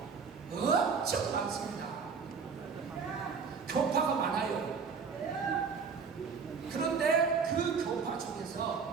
엄청 많습니다. 교파가 많아요. 그런데 그 교파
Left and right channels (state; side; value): quieter; left; 5.6 dB